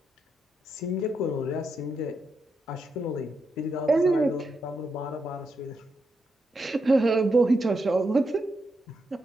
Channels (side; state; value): both; normal; correlation 0.83